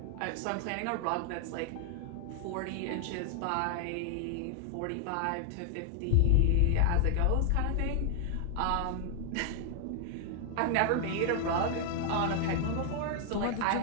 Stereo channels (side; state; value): both; different; correlation 0.00